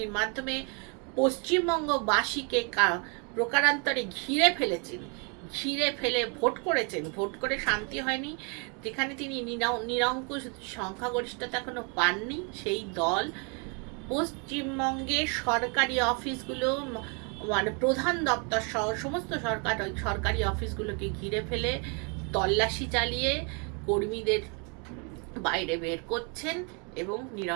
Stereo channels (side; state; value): left; quieter; 35.5 dB